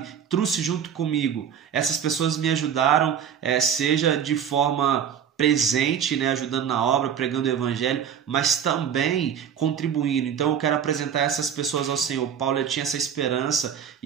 trouxe junto comigo. Essas pessoas me ajudaram, seja de forma presente, né, ajudando na obra, pregando o evangelho, mas também contribuindo. Então eu quero apresentar essas pessoas ao Senhor. Paulo ele tinha essa esperança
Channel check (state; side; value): quieter; left; 8.3 dB